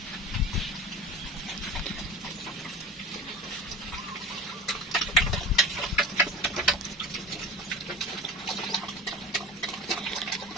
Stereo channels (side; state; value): both; normal; correlation 0.32